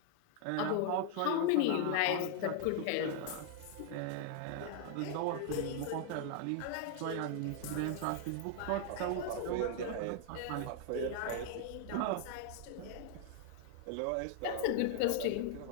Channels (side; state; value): both; different; correlation 0.00